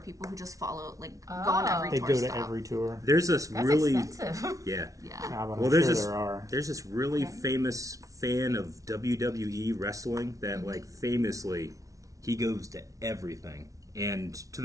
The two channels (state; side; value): late; left; 0.17 ms